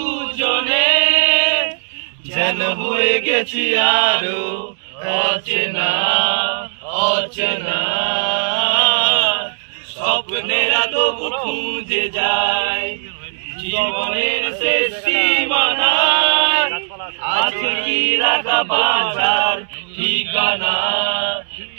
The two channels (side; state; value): left; silent; 68 dB below the other